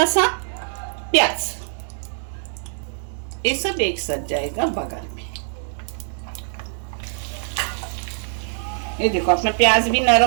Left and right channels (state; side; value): silent; left; 63 dB below the other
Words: सा प्याज। ये सब एक साथ जाएगा बघार में। ये देखो, अपना प्याज भी